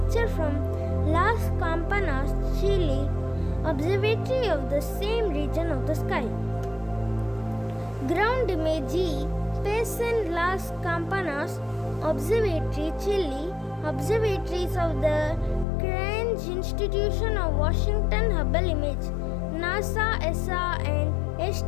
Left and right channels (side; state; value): right; drops out; at 15.7 s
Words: from Las Campanas, Chile, observatory of the same region of the sky. Ground image E, Payson Las Campanas, Observatory, Chile, observatories of the Cranch Institution of Washington. Hubble image, NASA, ESA, and